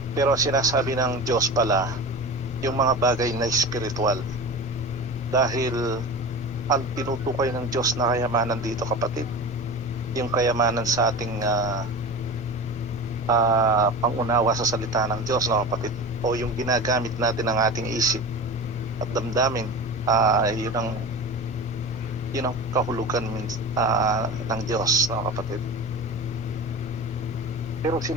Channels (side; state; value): both; normal; correlation 0.31